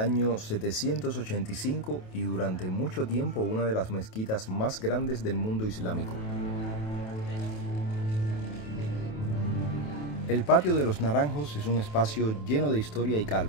785 y durante mucho tiempo una de las mezquitas más grandes del mundo islámico. El patio de los Naranjos es un espacio lleno de historia y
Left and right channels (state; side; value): late; right; 28 ms